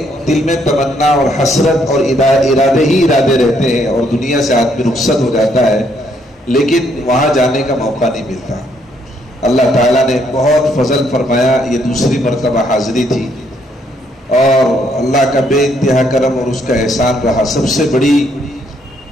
دل میں تمنا اور حسرت اور ارادے ہی ارادے رہتے ہیں اور دنیا سے آدمی رخصت ہو جاتا ہے لیکن وہاں جانے کا موقع نہیں ملتا. اللہ تعالیٰ نے بہت فضل فرمایا. یہ دوسری مرتبہ حاضری تھی اور اللہ کا بے انتہا کرم اور اس کا احسان رہا. سب سے بڑی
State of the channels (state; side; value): normal; both; correlation 0.70